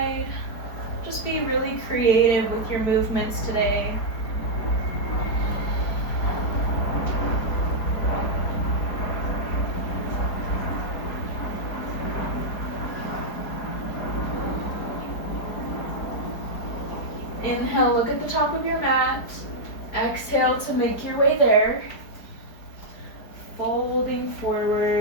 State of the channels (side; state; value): right; late; 4.6 ms